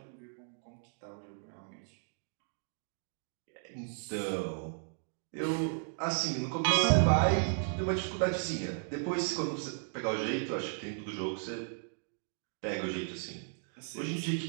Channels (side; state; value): left; silent; digital silence